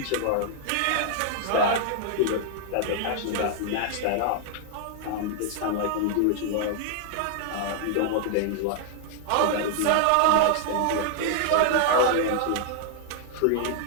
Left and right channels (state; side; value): different; both; correlation -0.01